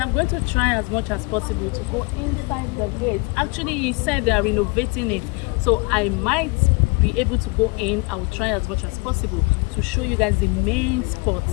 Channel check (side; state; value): right; quieter; 28.8 dB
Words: I'm going to try as much as possible to go inside the gate. Actually, he said they are renovating it, so I might be able to go in. I will try as much as possible to show you guys the main spots.